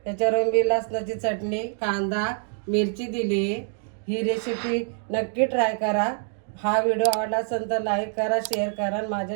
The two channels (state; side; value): silent; left; 56 dB below the other